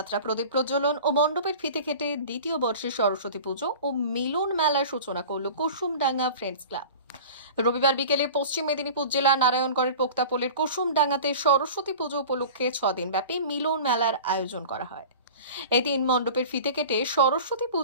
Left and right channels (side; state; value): both; inverted; correlation -0.38